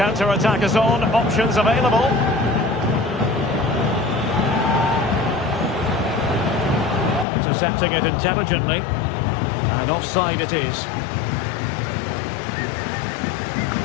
is on. Options available. Intercepting it intelligently. And offside it is.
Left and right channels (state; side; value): drops out; right; at 7.2 s